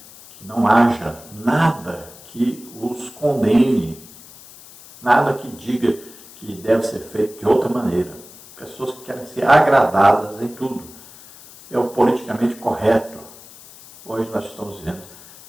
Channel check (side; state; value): left; noise; hiss, 20 dB below the sound